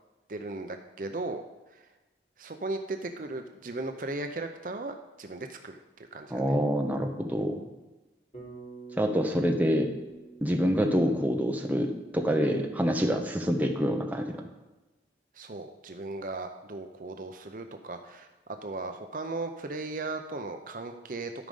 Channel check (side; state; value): both; normal; correlation 0.75